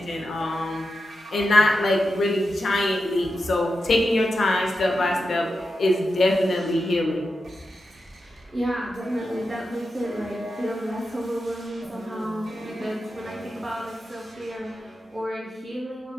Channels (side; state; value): both; normal; correlation 0.89